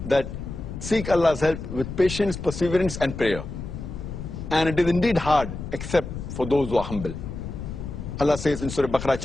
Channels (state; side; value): noise; left; rumble, 8 dB below the sound